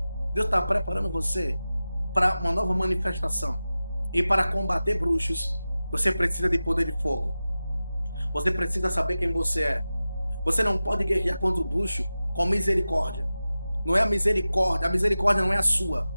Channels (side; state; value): both; inverted; correlation -0.95